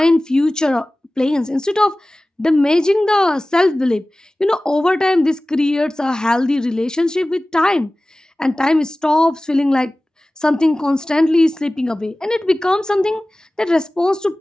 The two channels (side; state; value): both; normal; correlation 0.97